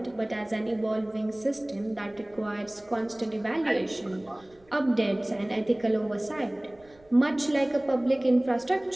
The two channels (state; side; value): noise; right; rumble, 30 dB below the sound